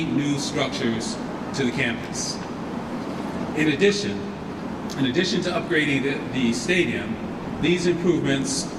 new structures to the campus. In addition to upgrading the stadium, these improvements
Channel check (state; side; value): identical; both; correlation 1.00